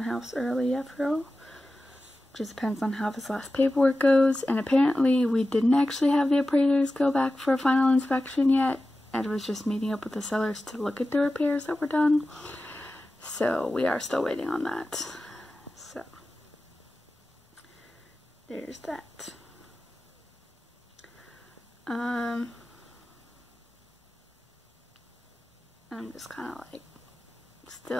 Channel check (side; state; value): both; normal; correlation 0.94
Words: house early after all. Just depends on how this last paperwork goes. And apparently we didn't actually have the appraisers go back for a final inspection yet. Ed was just meeting up with the sellers to look at the repairs that were done. So we are still waiting on that. So there's that. I'm just kind of like